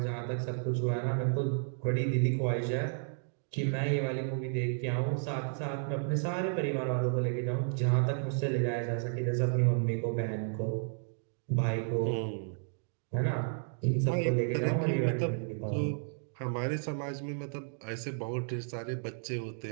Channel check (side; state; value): left; silent; digital silence